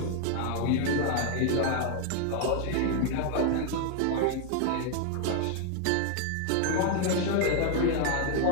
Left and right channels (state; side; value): different; both; correlation 0.00